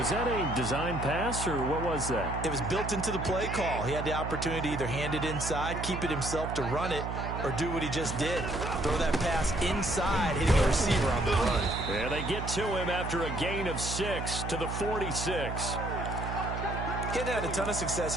that a design pass, or what was that? It was built into the play call. He had the opportunity to either hand it inside, keep it himself to run it, or do what he just did. Throw that pass inside, hitting the receiver on the run. And they get to him after a gain of 6 to the 46. He hasn't had a ton of success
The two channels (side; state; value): right; noise; hum, 5 dB below the sound